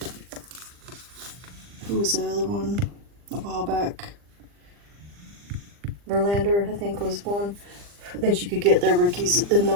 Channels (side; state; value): left; late; 40 ms